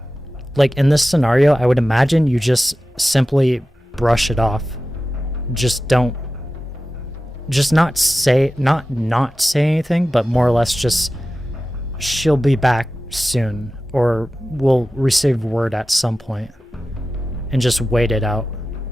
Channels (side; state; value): both; normal; correlation 0.94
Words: Like in this scenario, I would imagine you just simply brush it off. Just not say anything, but more or less just she'll be back soon, or we'll receive word at some point, and just wait it out